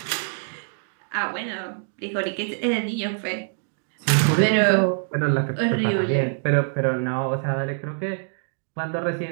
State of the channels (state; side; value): silent; left; 62 dB below the other